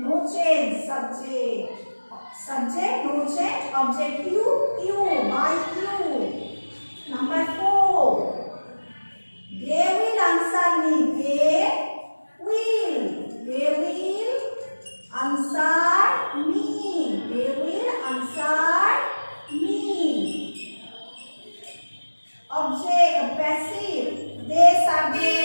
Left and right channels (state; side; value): inverted; both; correlation -1.00